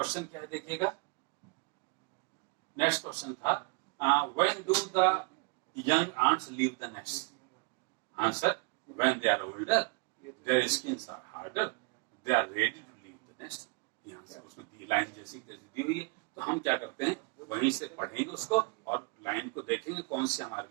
क्या है देखिएगा, नेक्स्ट क्वेश्चन था when do the young ants leave the nest? Answer, when they are older, their skins are harder, they are ready to leave the nest. यहाँ से उसमें दी लाइन जैसी दी हुई है, तो हम क्या करते हैं, वहीं से पढ़ेंगे उसको और लाइन को देखेंगे कौन सी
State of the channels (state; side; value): quieter; left; 33.1 dB